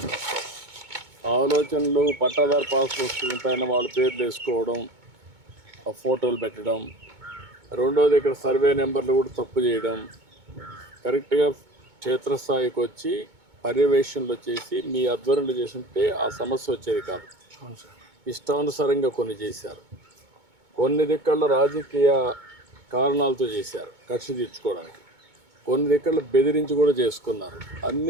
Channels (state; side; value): late; left; 2.2 ms